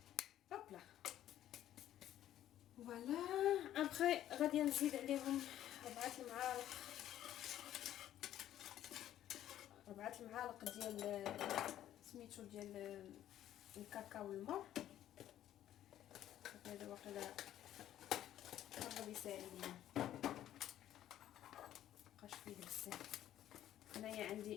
هوبلا فوالا. ابخي غادي نزيد عليهم 4 المعالق ديال سميتو ديال الكاكاو والمر. هذا واقيلا قرب يساعدني، مابقاش فيه بزاف. هنايا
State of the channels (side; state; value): right; quieter; 12.1 dB